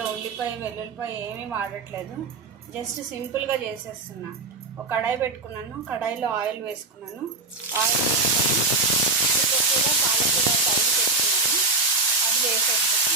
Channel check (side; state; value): left; quieter; 3.5 dB